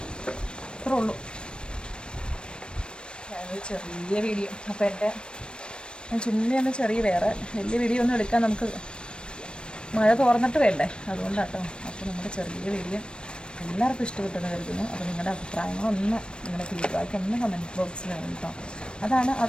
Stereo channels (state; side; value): late; right; 0.054 ms